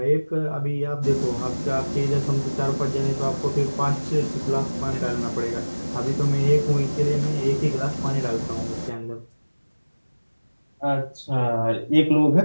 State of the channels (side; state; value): both; inverted; correlation -1.00